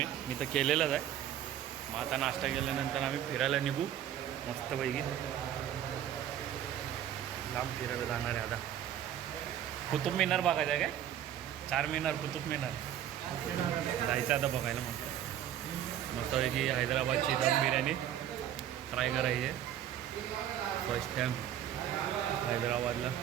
मी तर केलेलंच आहे. मग आता नाश्ता केल्यानंतर आम्ही फिरायला निघू मस्तपैकी. लांब फिरायला जाणार आहे आता. कुतुब मिनार बघायचं आहे काय? 4 मिनार, कुतुब मिनार जायचं आता बघायला. मग मस्तपैकी हैदराबादची दम बिर्याणी ट्राय करायची आहे. फर्स्ट टाईम हैदराबादला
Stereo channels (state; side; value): quieter; left; 10.8 dB